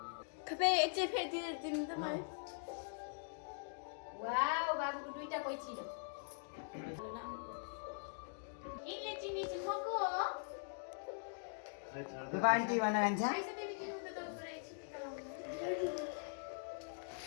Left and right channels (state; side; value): silent; right; digital silence